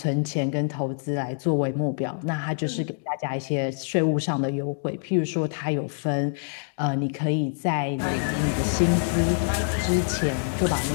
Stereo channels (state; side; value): silent; right; digital silence